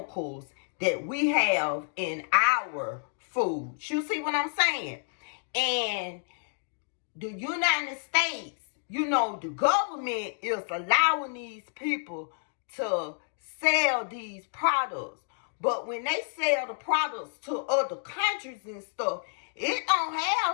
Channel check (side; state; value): right; silent; digital silence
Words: that we have in our foods. You see what I'm saying? And the United States, the government is allowing these people to sell these products. But when they sell the products to other countries and stuff, it don't